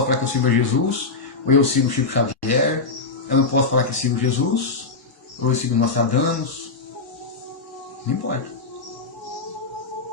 falar que eu sirvo a Jesus, ou eu sigo o Chico Xavier. Eu não posso falar que eu sigo Jesus, ou eu sigo Nostradamus. Não importa.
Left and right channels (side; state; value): right; quieter; 4.1 dB